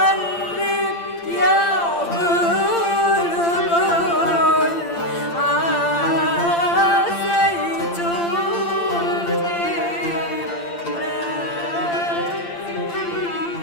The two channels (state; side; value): late; right; 8.8 ms